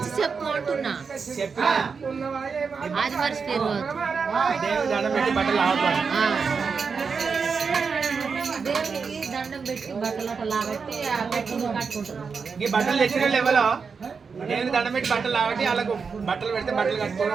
చెప్పు అంటున్నా అది మర్చిపోయారు దేవునికి దండం పెట్టి బట్టలు అట్లా లాగట్టి కట్టుకుంటారు ఈ బట్టలు తెచ్చిన లెవెల్లో నేను దండం పెట్టి బట్టలు లాగట్టి వాళ్ళకు బట్టలు పెడితే బట్టలు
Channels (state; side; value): quieter; left; 5.4 dB